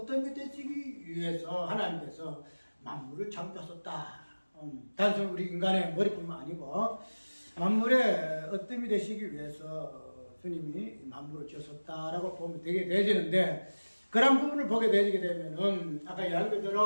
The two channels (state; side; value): inverted; both; correlation -1.00